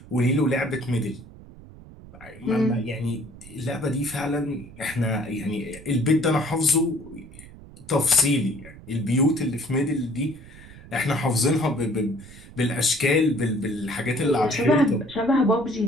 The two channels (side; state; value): right; noise; rumble, 19 dB below the sound